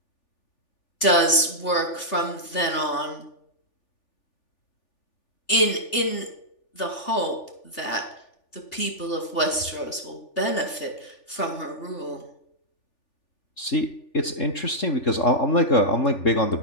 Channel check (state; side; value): late; right; 3.4 ms